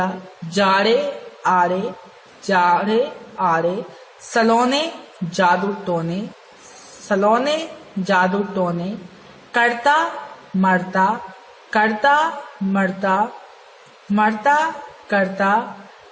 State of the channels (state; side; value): identical; both; correlation 1.00